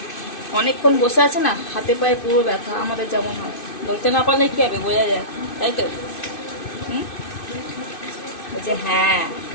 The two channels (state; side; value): late; right; 2.6 ms